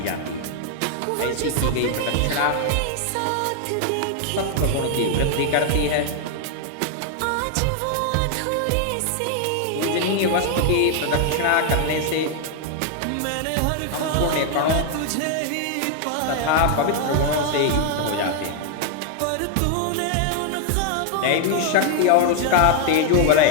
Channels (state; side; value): different; both; correlation 0.00